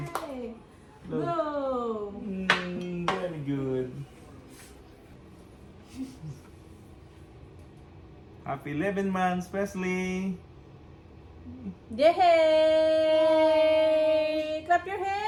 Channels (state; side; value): identical; both; correlation 1.00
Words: Blow. Very good. Happy 11 months, Wesley. Yay! Clap your hands!